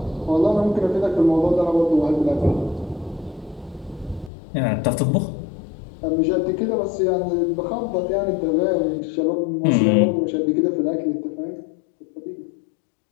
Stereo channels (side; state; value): right; drops out; at 4.3 s